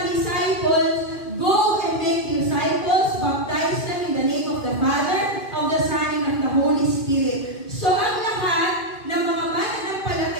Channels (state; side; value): late; right; 2.4 ms